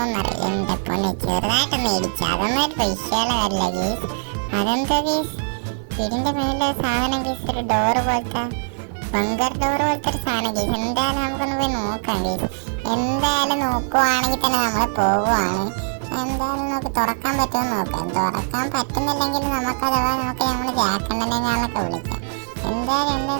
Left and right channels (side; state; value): left; silent; digital silence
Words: എന്റെ പൊന്നെ ചെറുതായിട്ടൊന്ന് ഇടിച്ചു. അതൊന്നും ഒരു വിഷയമുള്ള കാര്യമില്ല ഗീസ്. അതെന്താ ഗീസ്? വീടിന്റെ മേലെ സാധനം ഗീസ്, ഒരു ഡോറ് പോലത്തെ ബങ്കർ ഡോർ പോലത്തെ ഒരു സാധനം ഗീസ്. എന്തായാലും നമുക്കൊന്ന് പോയി നോക്കാം ഗീസ്. എന്തായാലും നോക്കുവാണെങ്കിൽ തന്നെ നമ്മൾ പോവുകയാണ്. എന്തായാലും നമുക്ക് തുറക്കാൻ പറ്റുമെന്ന് നോക്കാം. തുറക്കാൻ പറ്റുന്നില്ലെങ്കിൽ നമുക്ക് അഥവാ നമുക്ക് നമ്മൾ ജാക്കണ്ണനെ ഞാനൊക്കെ വിളിക്കാം.